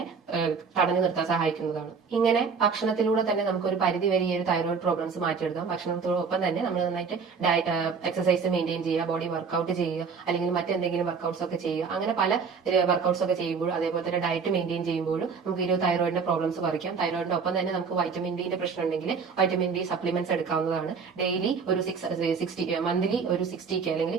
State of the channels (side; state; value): left; quieter; 5.5 dB